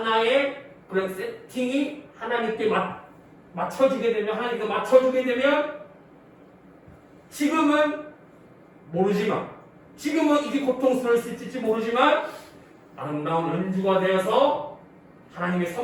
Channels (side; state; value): both; identical; correlation 1.00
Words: 그런 세팅이 하나님께 맞춰지게 되면 하나님께 맞춰주게 되면 지금은 모르지만 지금은 이게 고통스러울 수 있을지 모르지만 아름다운 연주가 되어서 하나님의